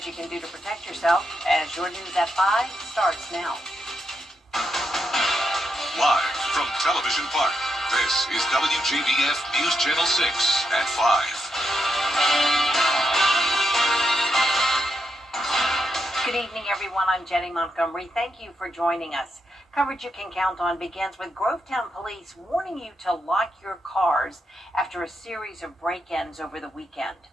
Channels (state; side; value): normal; both; correlation 0.82